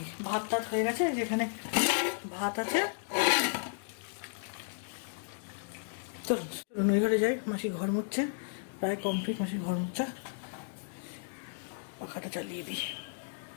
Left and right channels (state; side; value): silent; right; digital silence